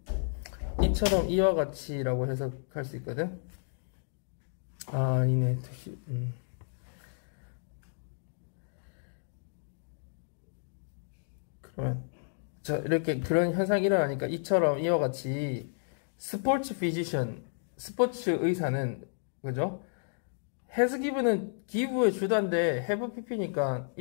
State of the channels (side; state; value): right; silent; digital silence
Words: 이처럼 이와 같이라고 해석할 수 있거든. 아니네. 그러면 저 이렇게 그런 현상이 일어나니까 이처럼 이와 같이 스포츠 피지션, 스포츠 의사는 그죠? has given은 give의 주단데 have pp니까